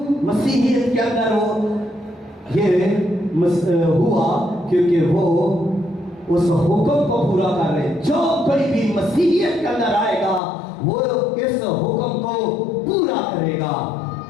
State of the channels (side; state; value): right; drops out; at 10.4 s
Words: मसीहियत के अंदर वो ये हुआ? क्योंकि वो उस हुक्म को पूरा कर रहे। जो कोई भी मसीहियत के अंदर आएगा वो इस हुक्म को पूरा करेगा